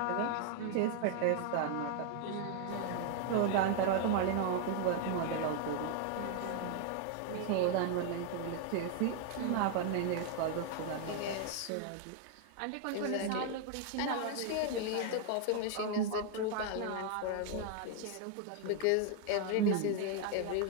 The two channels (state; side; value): different; both; correlation 0.00